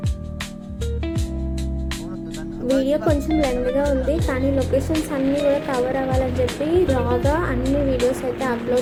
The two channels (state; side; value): identical; both; correlation 1.00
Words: వీడియో కొంచెం లెంగ్గా ఉంది, కానీ లొకేషన్స్ అన్నీ కూడా కవర్ అవ్వాలని చెప్పి రాగా అన్ని వీడియోస్ అయితే